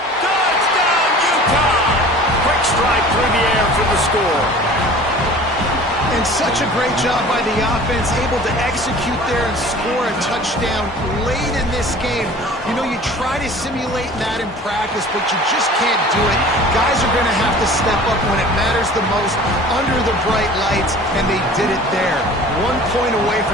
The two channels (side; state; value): both; normal; correlation 0.44